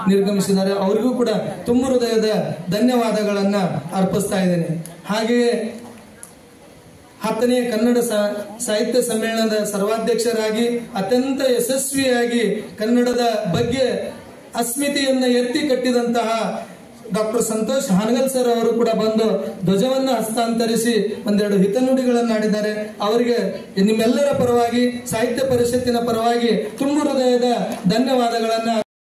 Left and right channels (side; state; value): both; identical; correlation 1.00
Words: ನಿರ್ಗಮಿಸಿದ್ದಾರೆ. ಅವರಿಗೂ ಕೂಡ ತುಂಬ ಹೃದಯದ ಧನ್ಯವಾದಗಳನ್ನ ಅರ್ಪಿಸ್ತಾ ಇದ್ದೇನೆ. ಹಾಗೆಯೇ 10ನೇ ಕನ್ನಡ ಸಾಹಿತ್ಯ ಸಮ್ಮೇಳನದ ಸರ್ವಾಧ್ಯಕ್ಷರಾಗಿ ಅತ್ಯಂತ ಯಶಸ್ವಿಯಾಗಿ ಕನ್ನಡದ ಬಗ್ಗೆ ಅಸ್ಮಿತೆಯನ್ನ ಎತ್ತಿ ಕಟ್ಟಿದಂತಹ ಡಾಕ್ಟರ್ ಸಂತೋಷ್ ಹಾನಗಲ್ ಸರ್ ಅವರು ಕೂಡ ಬಂದು ಧ್ವಜವನ್ನ ಹಸ್ತಾಂತರಿಸಿ ಒಂದೆರಡು ಹಿತನುಡಿಗಳನ್ನಾಡಿದ್ದಾರೆ. ಅವರಿಗೆ ನಿಮ್ಮೆಲ್ಲರ ಪರವಾಗಿ, ಸಾಹಿತ್ಯ ಪರಿಷತ್ತಿನ ಪರವಾಗಿ ತುಂಬ ಹೃದಯದ ಧನ್ಯವಾದಗಳನ್ನ